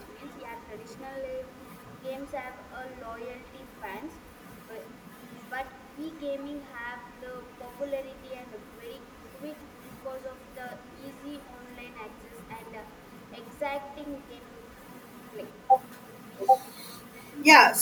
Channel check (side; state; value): both; identical; correlation 1.00